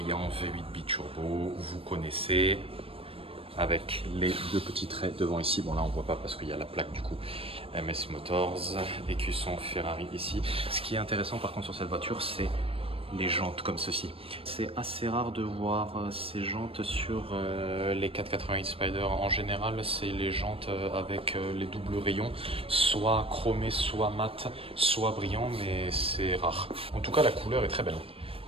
V8 biturbo, vous connaissez, avec les deux petits traits devant ici. Bon là on voit pas parce qu'il y a la plaque du coup MS Motors, écusson Ferrari ici. Ce qui est intéressant par contre sur cette voiture, c'est les jantes comme ceci. C'est assez rare de voir ces jantes sur les 488 Spider. En général, c'est les jantes avec les doubles rayons, soit chromés, soit mat, soit brillants, mais c'est rare. En tout cas, la couleur est très belle.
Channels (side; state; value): left; late; 0.27 ms